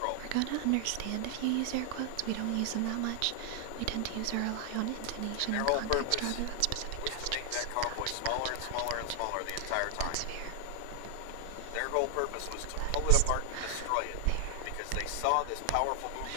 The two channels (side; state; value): both; different; correlation 0.00